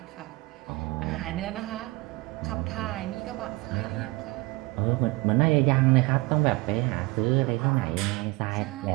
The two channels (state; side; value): quieter; left; 22.7 dB